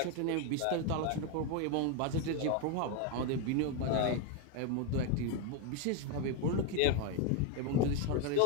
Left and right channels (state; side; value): different; both; correlation 0.01